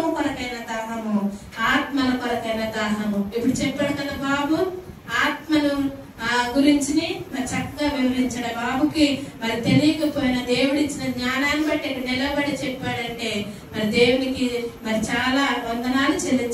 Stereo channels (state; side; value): identical; both; correlation 1.00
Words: కొరకైన దాహము, ఆత్మల కొరకైన దాహము. ఇప్పుడు చెప్పాడు కదా బాబు, ఆత్మను గురించి మరి చక్కగా వివరించాడు. బాబుకి మరి తెలియకపోయిన దేవుడిచ్చిన జ్ఞానాన్ని బట్టి నిలబడి చెప్పాడంటే మరి మరి దేవునికి మరి చాలా వందనాలు